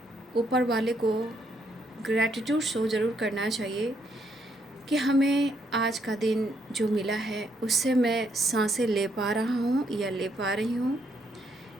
ऊपर वाले को ग्रैटिट्यूड शो ज़रूर करना चाहिए कि हमें आज का दिन जो मिला है उससे मैं सांसें ले पा रहा हूँ या ले पा रही हूँ,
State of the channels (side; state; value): both; normal; correlation 0.73